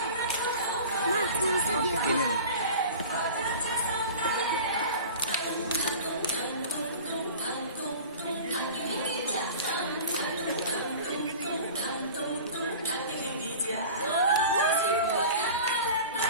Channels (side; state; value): both; inverted; correlation -0.39